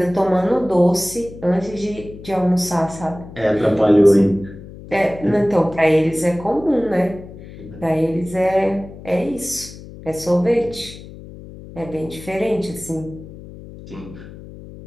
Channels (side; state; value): left; noise; hum, 16 dB below the sound